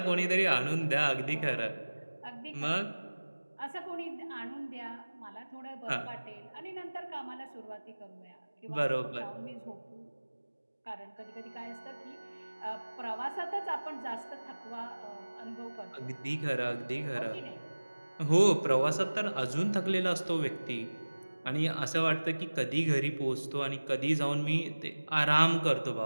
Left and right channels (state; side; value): inverted; both; correlation -1.00